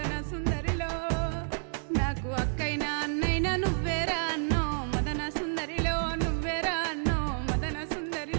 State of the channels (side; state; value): left; silent; digital silence